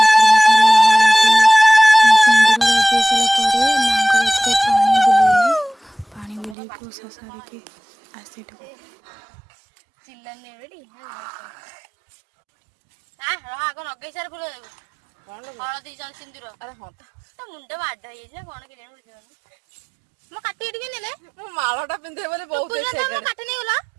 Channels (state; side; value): drops out; left; at 6.6 s